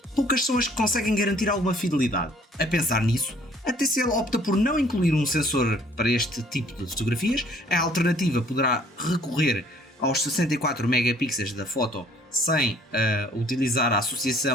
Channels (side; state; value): both; normal; correlation 0.59